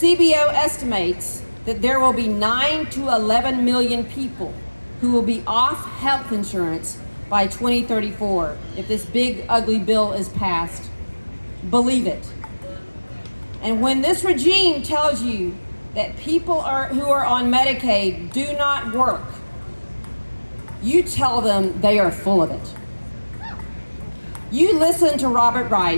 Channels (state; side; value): inverted; both; correlation -1.00